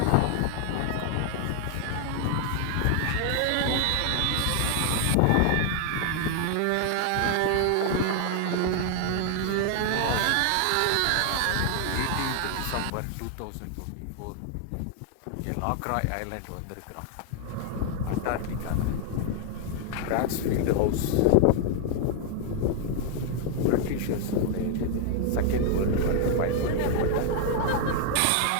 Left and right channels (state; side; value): different; both; correlation 0.00